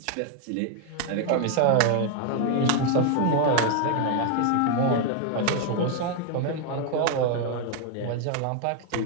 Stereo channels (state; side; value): different; both; correlation 0.01